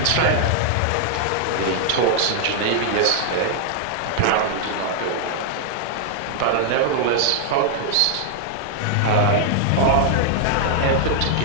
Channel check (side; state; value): both; different; correlation -0.01